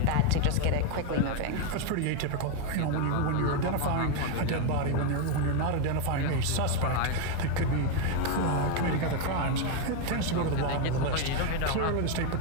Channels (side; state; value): both; different; correlation 0.01